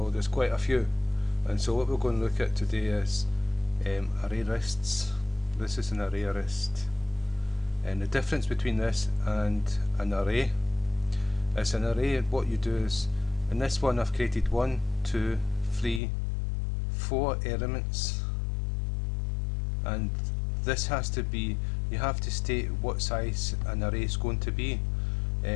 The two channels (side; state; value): right; drops out; at 16.0 s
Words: There's quite a few. And so what we're going to look at today is ArrayLists. This is an ArrayList, and the difference between this and an array is an array. What you do is, in this one I've created 1, 2, 3, 4 elements, and this has to be, you have to state what size an array is going to be,